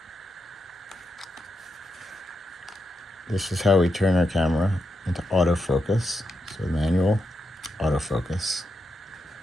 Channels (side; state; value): both; normal; correlation 0.85